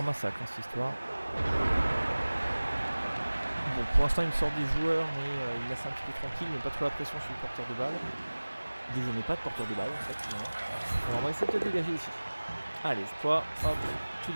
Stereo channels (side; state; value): both; inverted; correlation -1.00